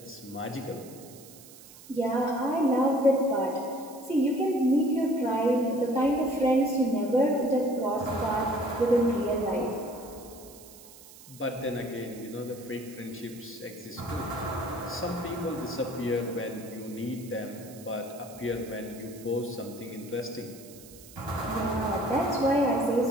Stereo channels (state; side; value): noise; right; hiss, 19 dB below the sound